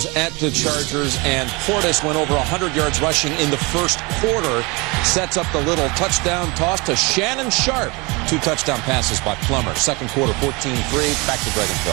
at the Chargers, and Portis went over 100 yards rushing in the first quarter. Sets up the little touchdown toss to Shannon Sharp. 2 touchdown passes by Plummer. Second quarter, 14-3. Back to Greg and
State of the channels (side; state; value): left; quieter; 26.9 dB